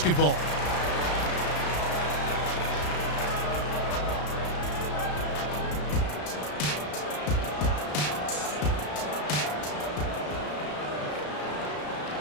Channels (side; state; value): right; late; 34 ms